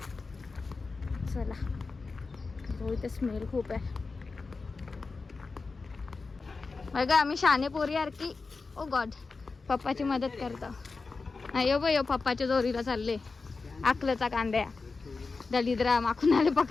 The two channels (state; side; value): quieter; right; 4.2 dB